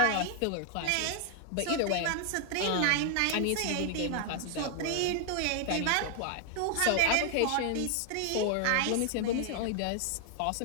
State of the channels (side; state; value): both; different; correlation 0.00